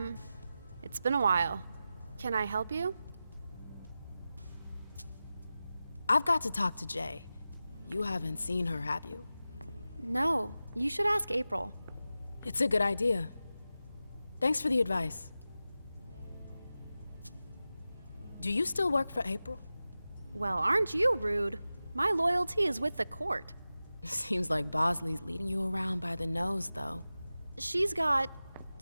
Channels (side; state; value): both; inverted; correlation -0.94